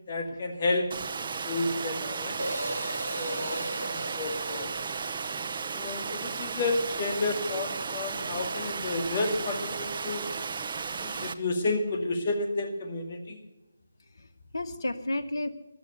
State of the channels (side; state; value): both; inverted; correlation -0.74